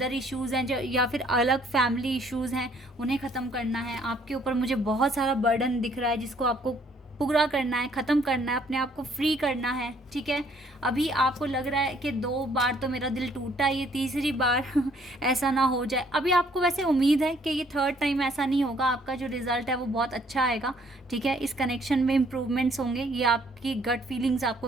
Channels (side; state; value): both; normal; correlation 0.63